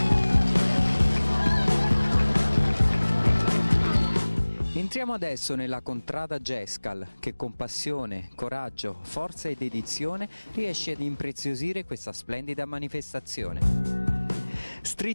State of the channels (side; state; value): both; inverted; correlation -1.00